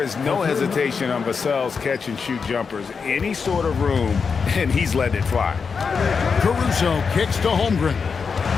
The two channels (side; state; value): right; quieter; 5.5 dB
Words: is no hesitation on Vassell's catch-and-shoot jumpers. Any sort of room, and he's letting it fly. Caruso kicks to Holmgren.